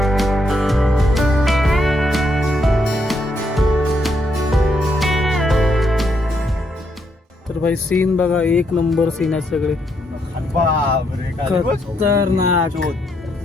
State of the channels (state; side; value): normal; both; correlation 0.76